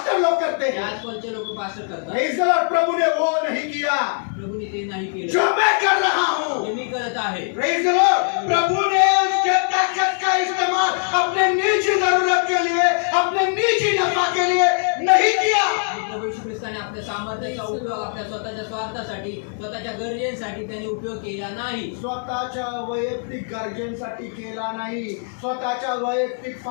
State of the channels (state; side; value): silent; right; 60 dB below the other